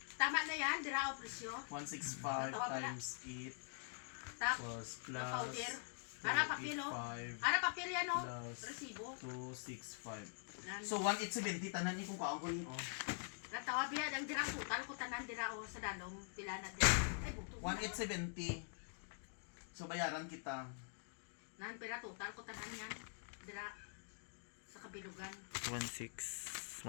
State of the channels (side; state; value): right; silent; digital silence